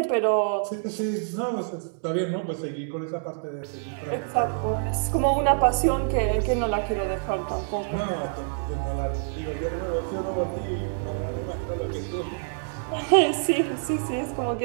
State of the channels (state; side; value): silent; left; digital silence